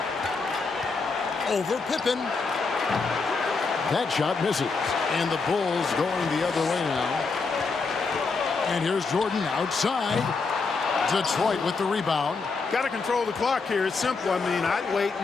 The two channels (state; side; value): quieter; right; 4.4 dB